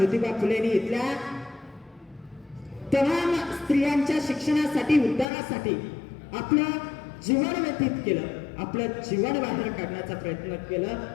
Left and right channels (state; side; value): drops out; right; at 5.2 s